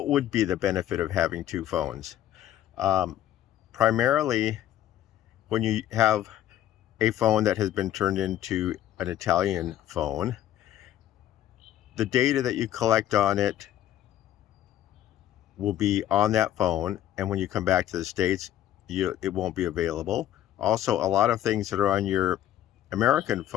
would be the benefit of having two phones? Um, Primarily, when you have a phone that has been turned into an Italian phone, the data that you collect on it will be on that phone, and when you come back to the States, it won't be available. Also, a lot of things that are on your American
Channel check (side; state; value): right; quieter; 12.1 dB